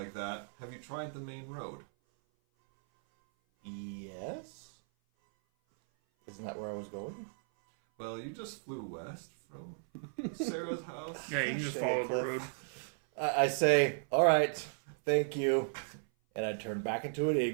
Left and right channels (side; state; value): left; silent; 54 dB below the other